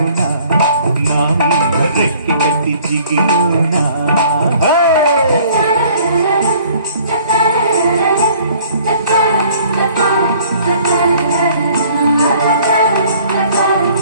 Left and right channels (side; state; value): both; inverted; correlation -0.55